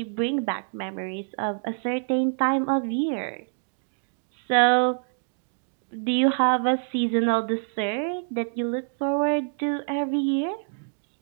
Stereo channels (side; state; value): left; silent; digital silence